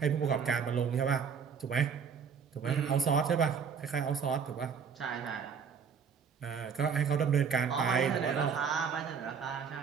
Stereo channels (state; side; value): quieter; left; 6.5 dB